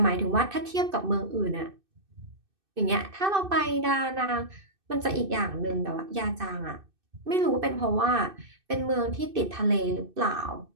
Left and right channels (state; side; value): late; left; 2.6 ms